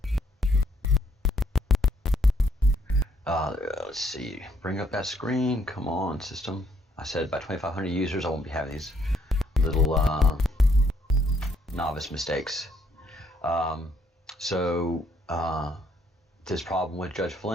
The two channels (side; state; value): both; normal; correlation 0.69